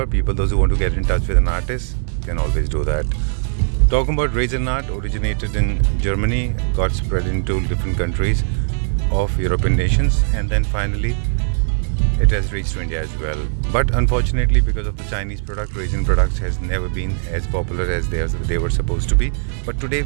People, those who want to get in touch with an artist can always do that. Talking about Raisin art, originated in Germany, got spread into different countries of European nations, and then finally it has reached to India as well. But unfortunately, because of the Chinese product, Raisin products has never been as popular as they were supposed to be. But today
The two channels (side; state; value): left; silent; digital silence